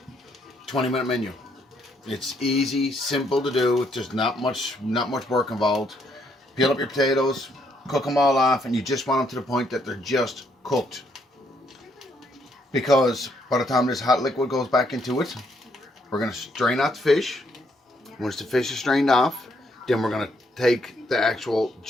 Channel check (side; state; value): both; normal; correlation 0.72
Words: 20-minute menu. It's easy, simple to do. There's not much work involved. Peel up your potatoes, cook them all off, and you just want them to the point that they're just cooked. Because by the time this hot liquid goes back into it, we're going to strain out the fish. Once the fish is strained off, then we're going to take the actual